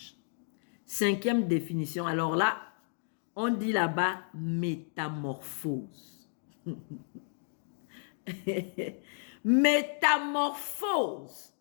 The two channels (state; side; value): silent; right; digital silence